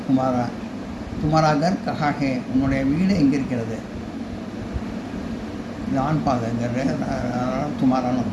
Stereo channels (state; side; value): identical; both; correlation 1.00